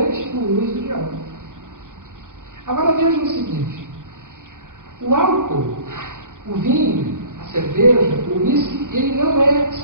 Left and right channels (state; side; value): late; left; 0.88 ms